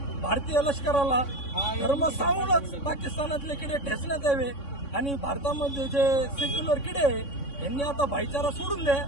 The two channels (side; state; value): right; late; 3.6 ms